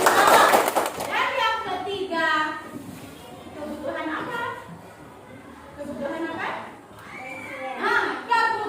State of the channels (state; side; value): identical; both; correlation 1.00